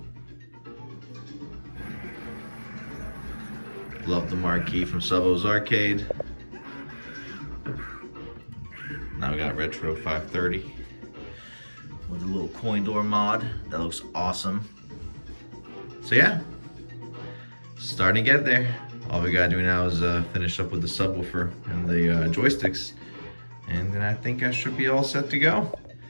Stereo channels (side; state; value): both; inverted; correlation -1.00